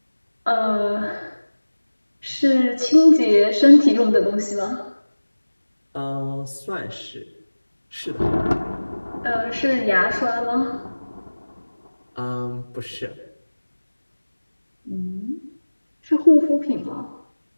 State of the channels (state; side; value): inverted; both; correlation -1.00